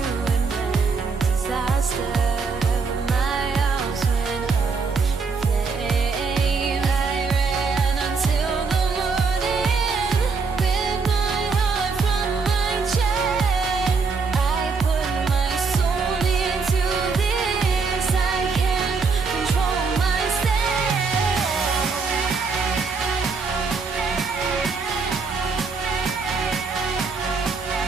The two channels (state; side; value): quieter; left; 4.7 dB